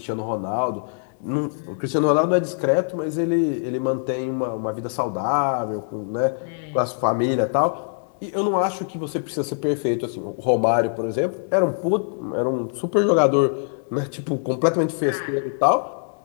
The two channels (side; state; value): right; silent; digital silence